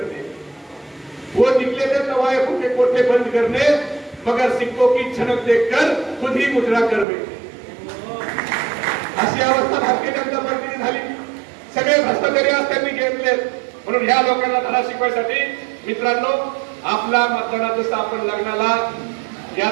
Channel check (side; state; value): left; drops out; at 7.1 s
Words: वो निकले थे तवाए फूके कोठे बंद करने, मगर सिक्कों की छनक देखकर खुद ही मुजरा कर बैठे. अशी अवस्था भारतीय जनता पार्टीने झाली. सगळे भ्रष्टाचारी आज त्यांनी घेतले. म्हणून ह्या लोकांना धडा शिकवायसाठी मित्रांनो, आपला मतदानात जसं आपण लग्नाला